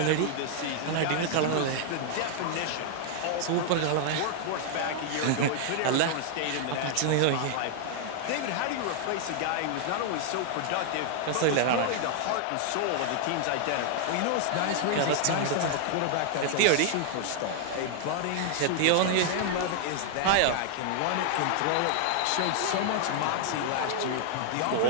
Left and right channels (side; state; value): both; different; correlation 0.00